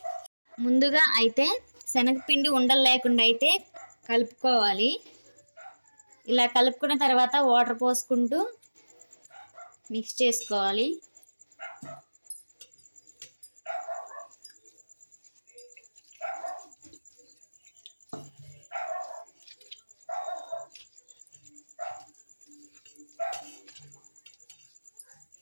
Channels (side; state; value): both; inverted; correlation -1.00